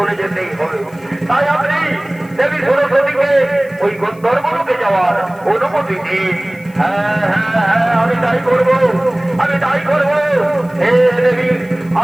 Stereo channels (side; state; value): left; noise; hiss, 28 dB below the sound